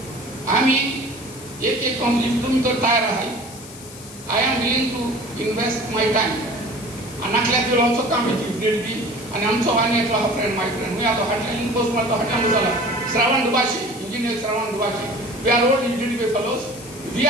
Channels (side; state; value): left; noise; hiss, 16 dB below the sound